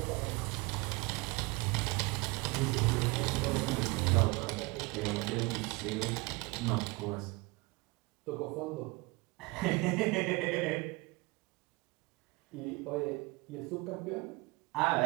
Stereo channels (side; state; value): left; quieter; 24.9 dB